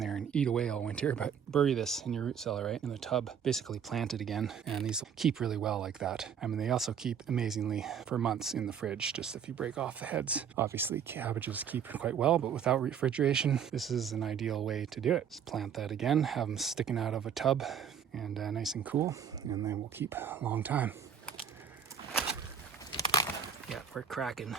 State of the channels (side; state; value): left; quieter; 7.8 dB